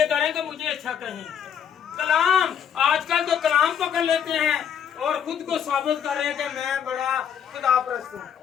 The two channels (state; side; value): quieter; right; 8.3 dB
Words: कर रहे हैं कि मुझे अच्छा कहें। कलाम आजकल तो कलाम पकड़ लेते हैं और खुद को साबित कर रहे हैं कि मैं बड़ा खुदा परस्त हूँ,